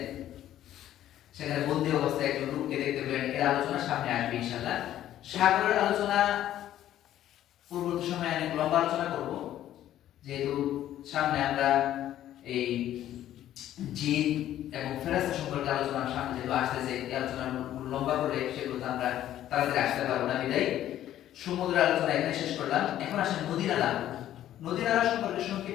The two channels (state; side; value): quieter; right; 12.3 dB